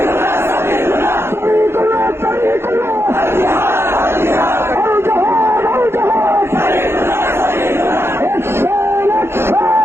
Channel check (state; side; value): late; left; 0.12 ms